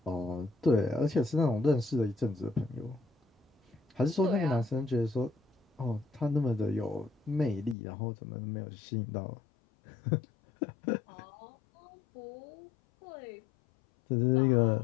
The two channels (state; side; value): drops out; right; at 7.8 s